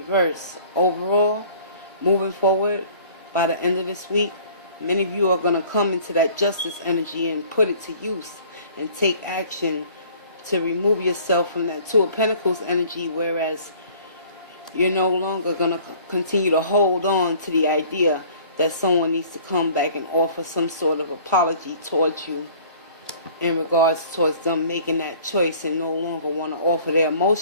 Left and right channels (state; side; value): inverted; both; correlation -0.51